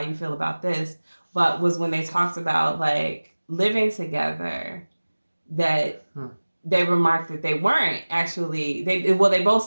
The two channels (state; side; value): inverted; both; correlation -1.00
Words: you feel about this, but was when they talked about like living together, that they remarked that they weren't actually, they both